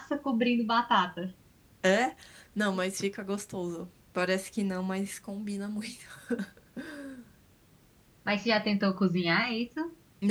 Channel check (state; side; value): identical; both; correlation 1.00